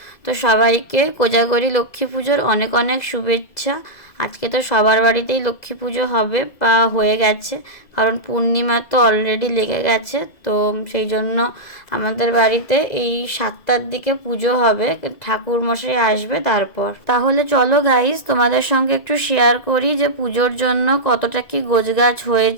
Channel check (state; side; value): late; right; 2.0 ms